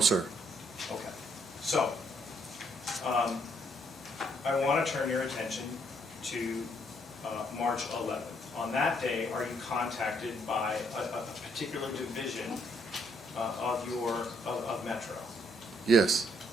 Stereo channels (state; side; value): normal; both; correlation 0.70